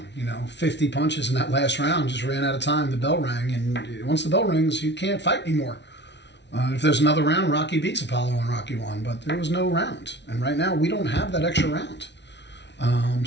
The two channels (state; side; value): late; right; 0.51 ms